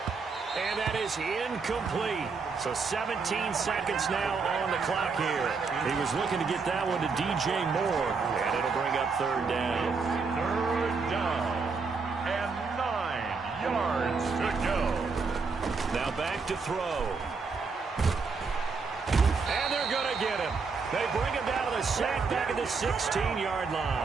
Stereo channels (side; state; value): left; quieter; 4.8 dB